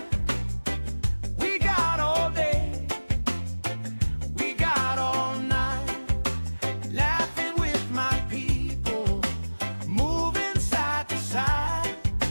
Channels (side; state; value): both; inverted; correlation -1.00